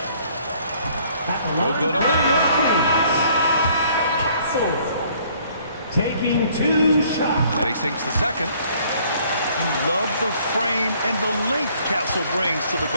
No good on that one. Castle taking 2 shots. And he sinks the second. You love the frame and the length Castle brings to the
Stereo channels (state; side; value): inverted; both; correlation -0.61